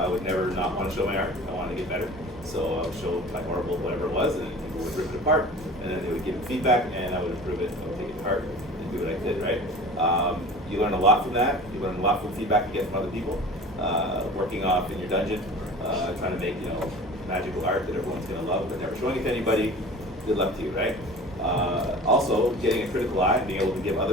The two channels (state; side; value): normal; both; correlation 0.40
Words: would never not want to show my art. I wanted to get better. So I would show my horrible whatever it was, and people would rip it apart, and then they would give me feedback, and I would improve it. I would take it apart and do what I did, right? You learn a lot from that. You learn a lot from feedback you get from other people. Working off in your dungeon, trying to make, you know, magical art that everyone's gonna love, but never showing it to anybody. Good luck to you, right? Also, getting a critical eye and being able to give